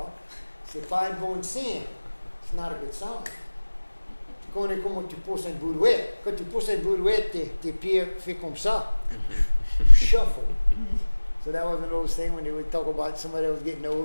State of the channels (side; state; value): both; inverted; correlation -1.00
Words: c'est pas un bon signe. It's not a good sign. Tu connais comment tu pousses une brouette. Quand tu pousses une brouette, tes pieds font comme ça. You shuffle. So that was one of those things when they would talk about somebody that was getting